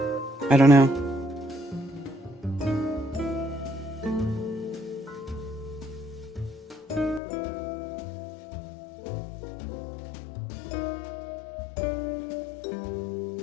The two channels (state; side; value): drops out; right; at 7.2 s